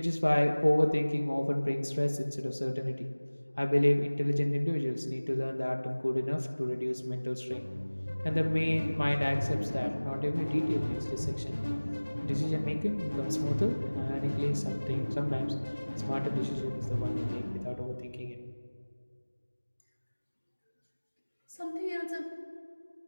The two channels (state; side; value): inverted; both; correlation -1.00